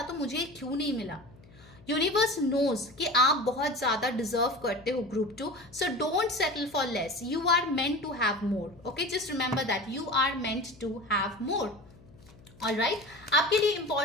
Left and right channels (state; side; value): noise; left; hum, 24 dB below the sound